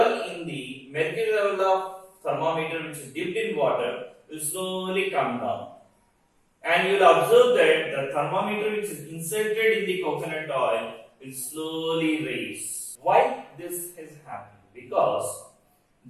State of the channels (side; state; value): both; identical; correlation 1.00